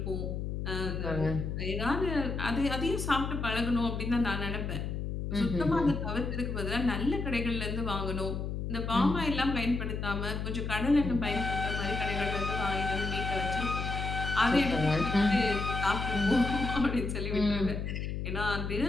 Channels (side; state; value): left; noise; hum, 3 dB below the sound